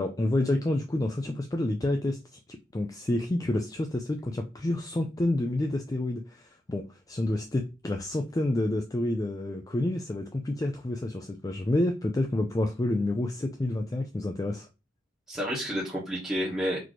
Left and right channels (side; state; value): both; normal; correlation 0.87